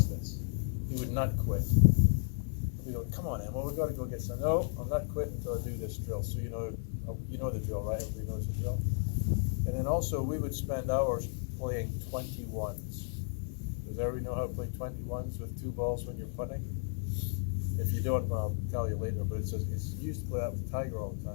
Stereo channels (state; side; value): silent; right; 55 dB below the other